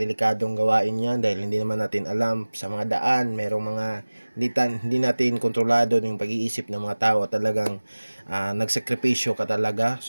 gawain yan dahil hindi naman natin alam sa mga daan, merong mga hindi natin kontrolado yung pag-iisip ng mga tao. Talagang nagsakripisyo ka talaga.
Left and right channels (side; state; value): both; inverted; correlation -1.00